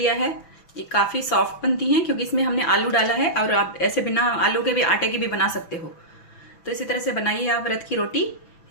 है। ये काफ़ी सॉफ्ट बनती हैं क्योंकि इसमें हमने आलू डाला है, और आप ऐसे बिना आलू के भी आटे की भी बना सकते हो। तो इसी तरह से बनाइए आप व्रत की रोटी।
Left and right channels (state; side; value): late; right; 6.0 ms